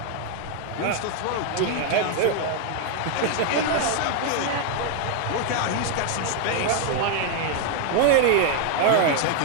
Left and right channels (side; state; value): both; different; correlation 0.01